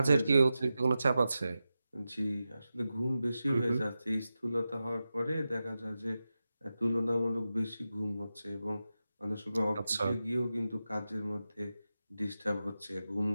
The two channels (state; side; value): inverted; both; correlation -0.92